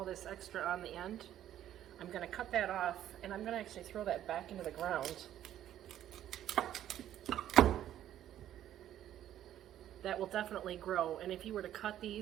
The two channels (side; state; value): left; quieter; 11.7 dB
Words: this extra on the end, I'm going to cut that off and I'm going to actually throw that back into the ground. That will definitely grow, and if you were to cut